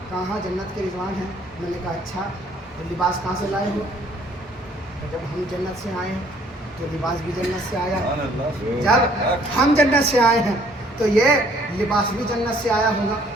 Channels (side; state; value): both; normal; correlation 0.61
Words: کہاں جنت کے رضوان ہیں. میں نے کہا اچھا تو لباس کہاں سے لائے ہو؟ جب ہم جنت سے آئے ہیں تو لباس بھی جنت سے آیا. جب ہم جنت سے آئے ہیں تو یہ لباس بھی جنت سے آیا ہوگا.